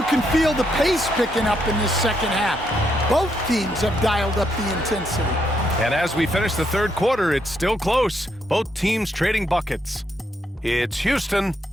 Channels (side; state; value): both; normal; correlation 0.77